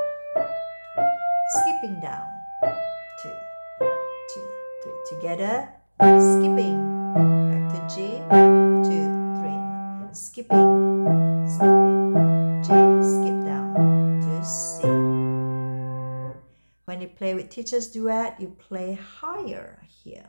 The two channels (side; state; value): both; inverted; correlation -1.00